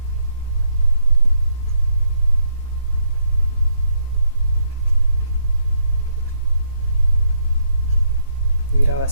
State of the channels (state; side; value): inverted; both; correlation -0.75